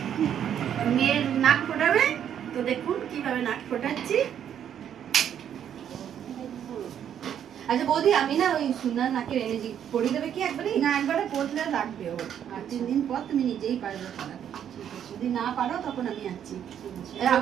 মেয়ের নাক ফোটাবে, তো দেখুন কিভাবে নাক ফোটাচ্ছি। আচ্ছা বৌদি, আমি না ওই সুনার নাকের এনার্জি পড়িয়ে দেবে কি একবারে? না, একবারে পড়লে লাগবে ওর, আর 3 দিন পর তুমি নিজেই পারবে পড়াতে। যদি না পারো তখন আমি আছি।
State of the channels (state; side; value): quieter; left; 9.4 dB